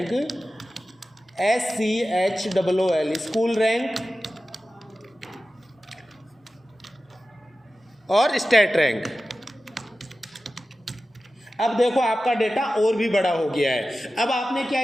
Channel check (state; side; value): normal; both; correlation 0.94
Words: SCHOOL school rank और स्टेट रैंक। अब देखो आपका डेटा और भी बड़ा हो गया है। अब आपने क्या